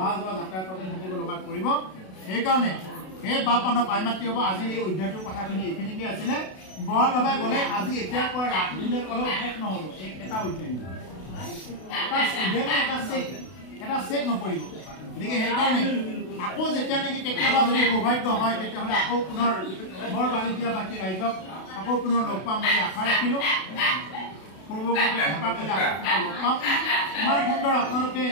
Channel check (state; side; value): late; right; 32 ms